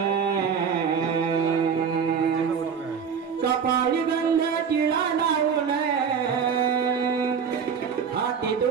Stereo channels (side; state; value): left; quieter; 6.7 dB